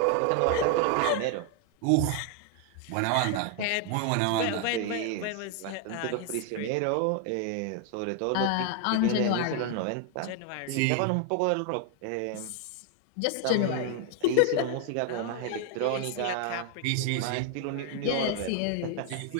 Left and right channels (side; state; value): both; different; correlation 0.00